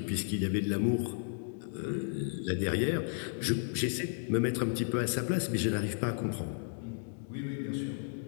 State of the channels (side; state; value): right; silent; digital silence